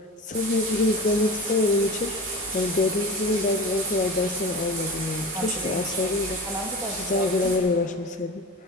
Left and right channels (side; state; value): both; normal; correlation 0.32